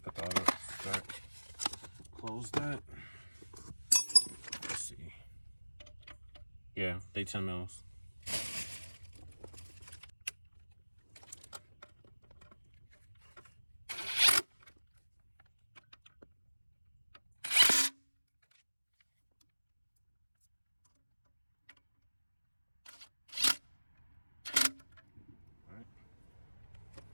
that up. Start. Close that. Let's see. Yeah, they 10 mils.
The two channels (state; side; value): inverted; both; correlation -1.00